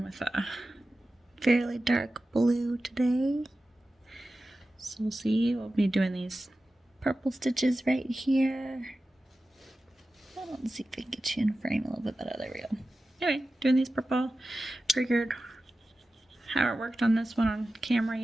with a fairly dark blue today. So we'll see, we'll be doing these purple stitches right here. Let's see if we can get you in frame a little bit better. There we go. Anyway, doing these purple. Figured haven't worked on this one on camera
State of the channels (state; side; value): normal; both; correlation 0.94